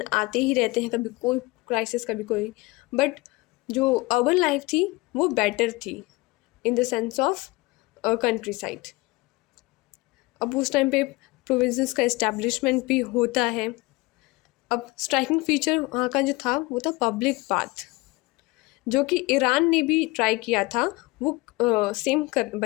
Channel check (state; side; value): quieter; right; 22.6 dB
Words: आते ही रहते हैं, कभी कोई क्राइसिस कभी कोई। बट जो अर्बन लाइफ थी वो बेटर थी in the sense of country side. अब उस टाइम पे प्रोविंसेस का इस्टेब्लिशमेंट भी होता है। अब स्ट्राइकिंग फीचर वहाँ का जो था वो था पब्लिक बाथ, जो कि ईरान ने भी ट्राई किया था वो सेम